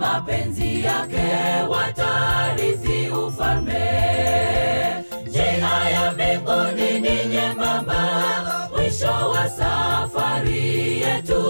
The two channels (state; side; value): inverted; both; correlation -1.00